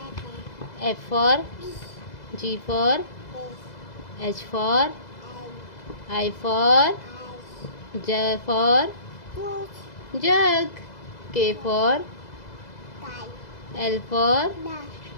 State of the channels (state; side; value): late; right; 2.0 ms